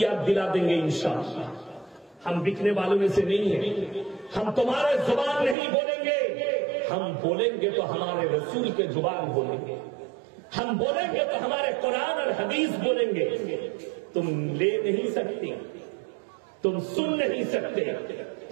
याद दिला देंगे इंशाअल्लाह। हम बिकने वालों में से नहीं है, हम तुम्हारे जुबान नहीं बोलेंगे, हम बोलेंगे तो हमारे रसूल के जुबान बोलेंगे, हम बोलेंगे तो हमारे कुरान और हदीस बोलेंगे। तुम ले नहीं सकती, तुम सुन नहीं सकते,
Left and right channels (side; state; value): left; drops out; at 5.6 s